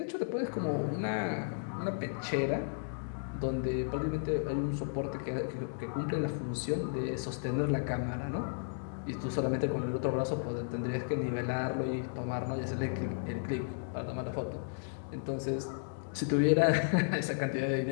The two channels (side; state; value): right; silent; digital silence